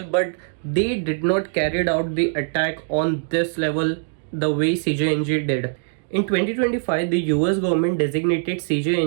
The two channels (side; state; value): left; silent; digital silence